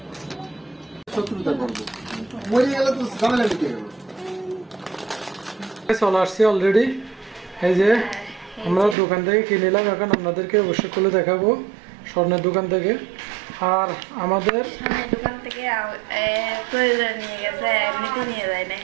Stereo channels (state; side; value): drops out; left; at 9.0 s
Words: চলে আসছি অলরেডি। এই যে আমরা দোকান থেকে কিনে নিলাম, এখন আপনাদেরকে অবশ্যই খুলে দেখাবো স্বর্ণের দোকান থেকে। আর আমাদের দোকান থেকে প্রয়োজন নিয়ে গেছে, এমনিতে নিয়ে যায় না,